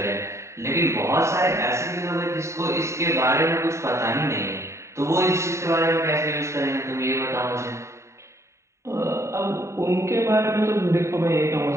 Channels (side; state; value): left; late; 0.14 ms